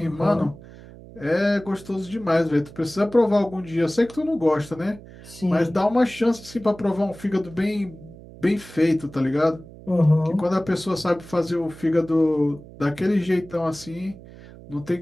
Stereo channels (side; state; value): right; noise; hum, 18 dB below the sound